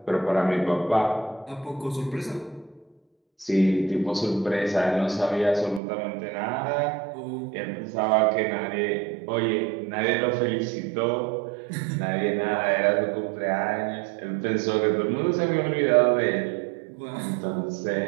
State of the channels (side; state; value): left; drops out; at 5.8 s